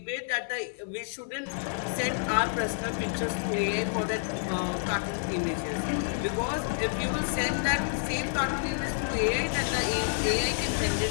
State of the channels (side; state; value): right; silent; digital silence